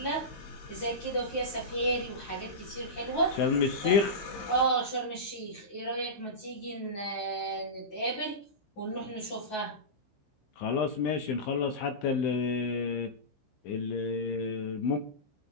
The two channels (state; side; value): late; right; 15 ms